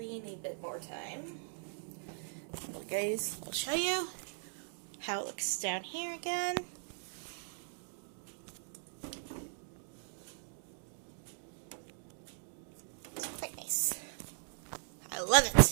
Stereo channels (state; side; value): silent; left; digital silence